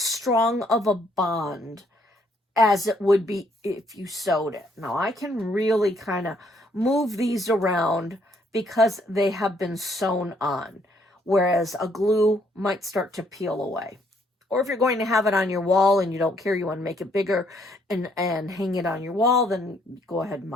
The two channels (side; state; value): both; normal; correlation 0.68